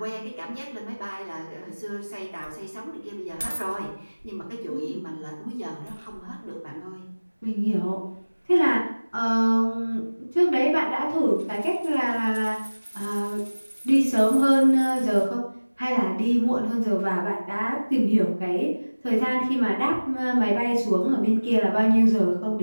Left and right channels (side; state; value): both; inverted; correlation -1.00